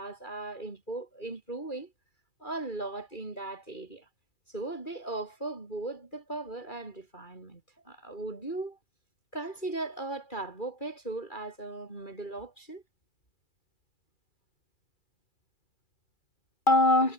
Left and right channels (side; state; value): right; late; 2.4 ms